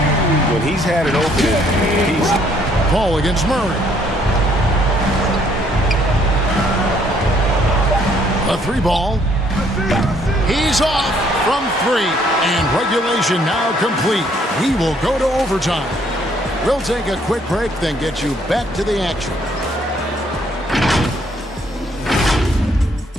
When he's had an opening, he's... Paul against Murray. A 3-ball. He's off from 3. And regulation now complete. We will go to overtime. We'll take a quick break, then get you back to the action.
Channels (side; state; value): both; normal; correlation 0.65